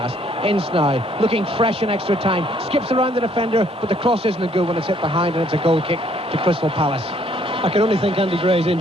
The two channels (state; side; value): normal; both; correlation 0.65